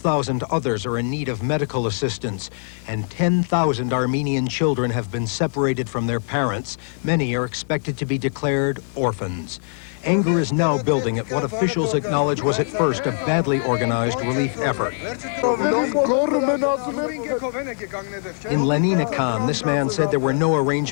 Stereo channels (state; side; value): silent; right; 64 dB below the other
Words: others are in need of medical assistance, and 10,000 Armenian children have been separated from their parents. Many are expected to be declared orphans. Anger is now building at what officials acknowledge was at first a badly organized relief effort. In Lenina Khan, this man said there were no